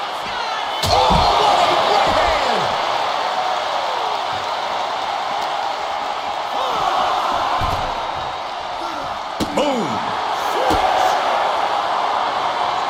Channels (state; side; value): identical; both; correlation 1.00